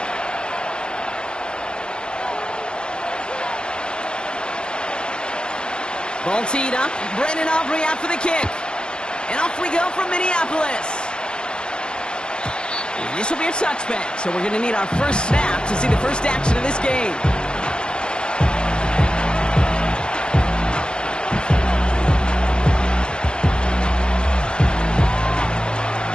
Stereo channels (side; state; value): right; late; 0.050 ms